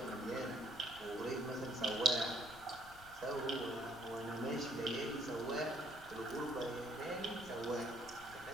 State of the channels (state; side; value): noise; left; rumble, 18 dB below the sound